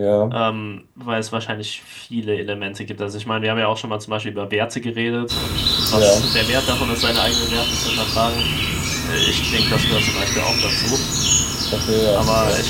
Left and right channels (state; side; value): identical; both; correlation 1.00